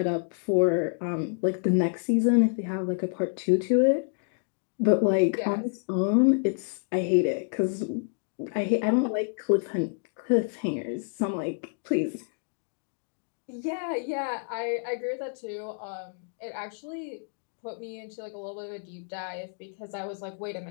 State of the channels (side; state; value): right; silent; digital silence